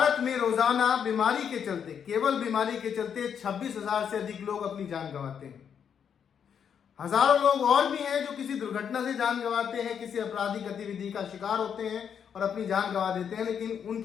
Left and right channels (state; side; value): quieter; right; 7.7 dB